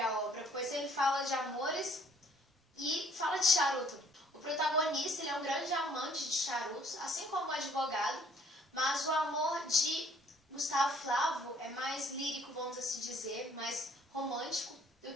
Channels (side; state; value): both; normal; correlation 0.61